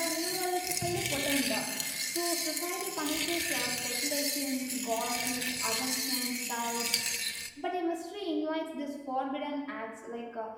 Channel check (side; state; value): both; identical; correlation 1.00